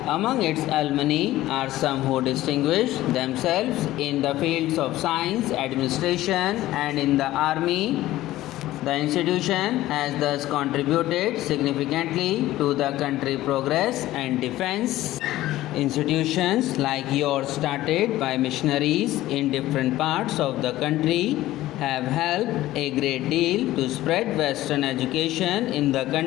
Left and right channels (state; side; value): quieter; right; 15.6 dB